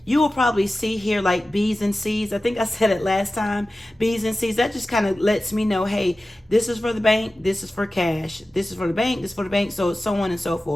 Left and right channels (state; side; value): normal; both; correlation 0.95